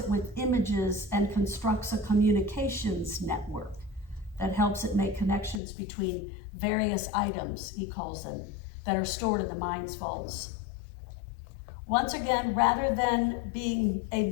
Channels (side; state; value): right; drops out; at 5.6 s